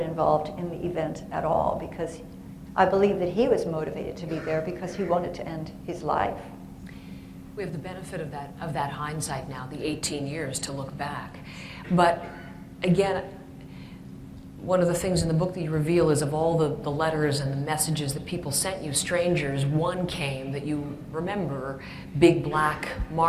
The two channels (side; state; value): both; identical; correlation 1.00